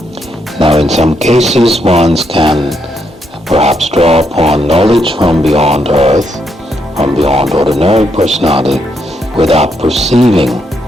Now, in some cases, one can perhaps draw upon knowledge from beyond earth, from beyond ordinary personality, without perceiving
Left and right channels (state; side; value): normal; both; correlation 0.78